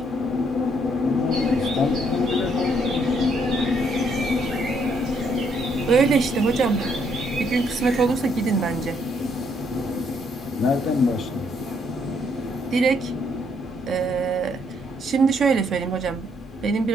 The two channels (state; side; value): normal; both; correlation 0.71